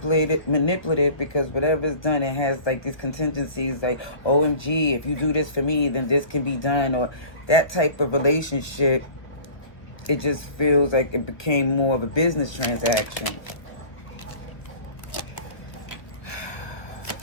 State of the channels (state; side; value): late; right; 1.2 ms